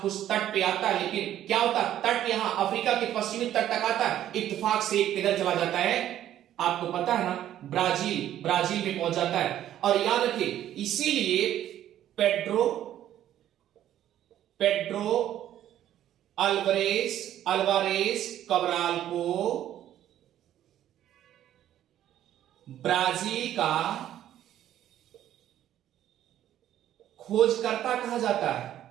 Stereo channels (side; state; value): left; quieter; 11.8 dB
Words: कुछ तट पे आता है, लेकिन क्या होता है, तट यहां अफ्रीका के पश्चिमी तट तक आता है, इत्तेफाक से एक किधर चला जाता है, आपको पता है ना, ब्राजील में पहुंच जाता है। और याद रखिए, इसीलिए पेड्रो अल्वारेज कबराल को ब्राजील का खोजकर्ता कहा जाता है।